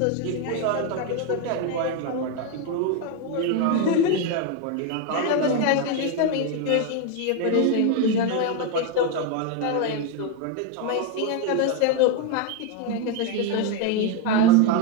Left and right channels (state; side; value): different; both; correlation 0.01